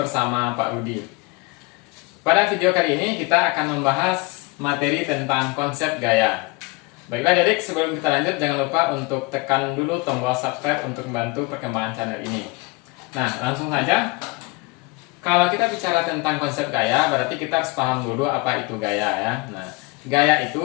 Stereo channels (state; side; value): quieter; right; 25.0 dB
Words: Pak Rudi. Pada video kali ini kita akan membahas materi tentang konsep gaya. Baiklah adik, sebelum kita lanjut jangan lupa untuk tekan dulu tombol subscribe untuk membantu perkembangan channel ini. Nah, langsung saja. Kalau kita bicara tentang konsep gaya, berarti kita harus paham dulu apa itu gaya ya. Nah, gaya